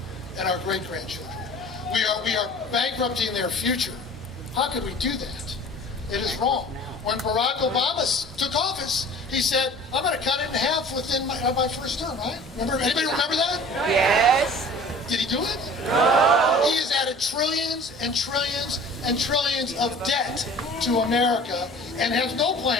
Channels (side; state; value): both; normal; correlation 0.45